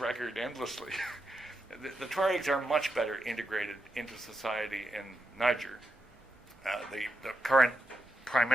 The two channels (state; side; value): normal; both; correlation 0.84